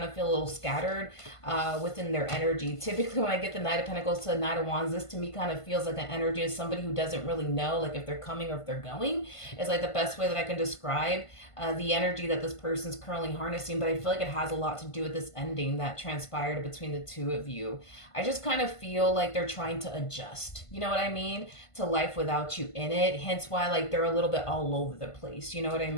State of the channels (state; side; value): late; right; 1.5 ms